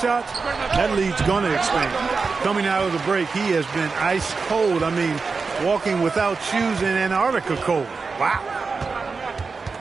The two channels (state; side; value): quieter; left; 4.6 dB